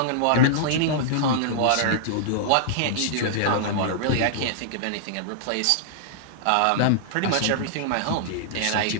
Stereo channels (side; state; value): both; different; correlation -0.01